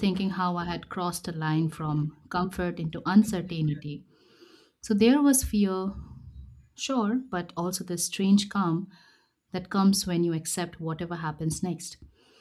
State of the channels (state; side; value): identical; both; correlation 1.00